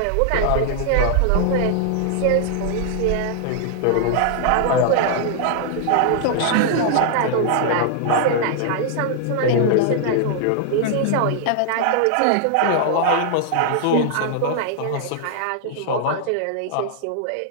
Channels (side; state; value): both; different; correlation -0.01